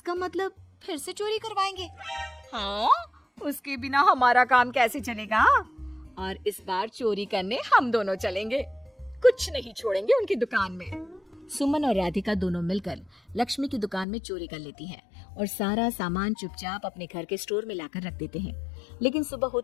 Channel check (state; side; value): drops out; right; at 14.1 s